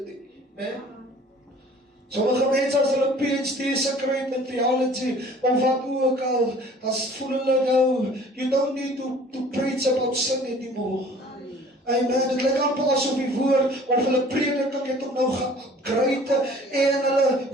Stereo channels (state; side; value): normal; both; correlation 0.50